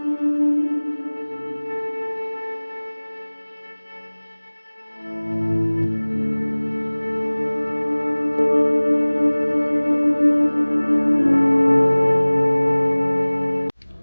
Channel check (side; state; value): both; inverted; correlation -1.00